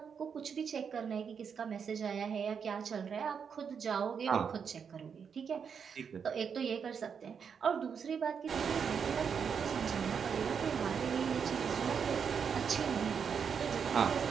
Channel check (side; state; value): left; quieter; 6.7 dB